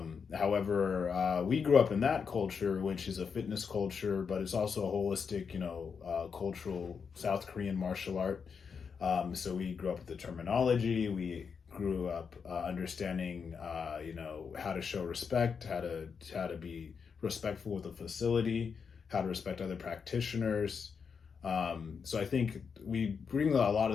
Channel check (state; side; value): quieter; right; 6.1 dB